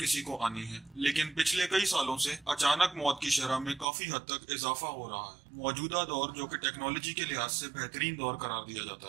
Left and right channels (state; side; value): drops out; left; at 3.9 s